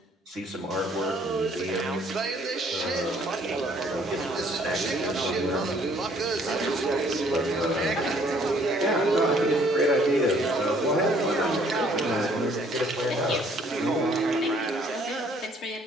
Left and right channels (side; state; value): both; normal; correlation 0.61